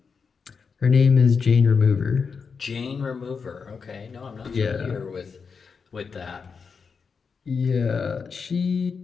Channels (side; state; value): right; quieter; 5.5 dB